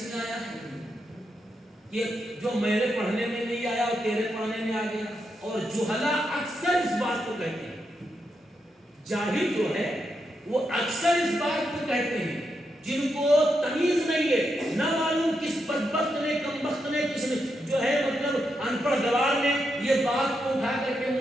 میں آیا ہے کہ جو میرے پڑھنے میں نہیں آیا اور تیرے پڑھنے میں آ گیا؟ اور جہلا اکثر اس بات کو کہتے ہیں، جاہل جو ہے وہ اکثر اس بات کو کہتے ہیں، جن کو تمیز نہیں ہے، نہ معلوم کس بدبخت نے، کمبخت نے، کس نے جو ہے مطلب ان پڑھ گوار نے یہ بات کو اٹھا کر کے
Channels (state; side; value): normal; both; correlation 0.84